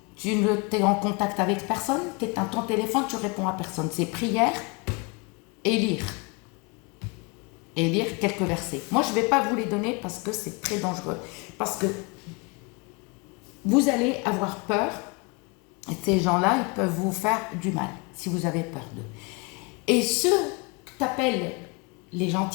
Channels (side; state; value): right; quieter; 29.8 dB